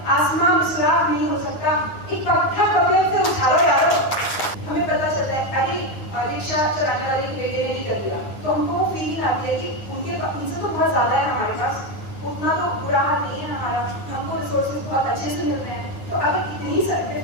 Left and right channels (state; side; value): late; right; 9.7 ms